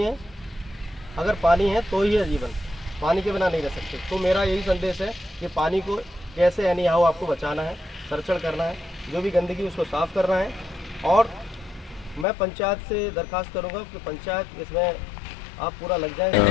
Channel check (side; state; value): right; drops out; at 12.2 s